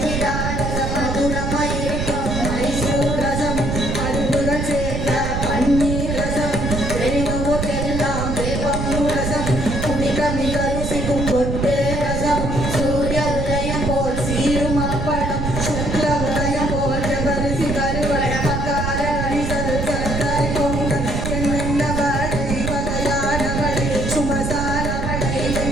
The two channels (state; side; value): noise; right; rumble, 2 dB below the sound